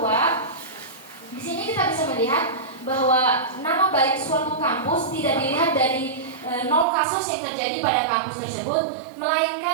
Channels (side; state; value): left; drops out; at 6.9 s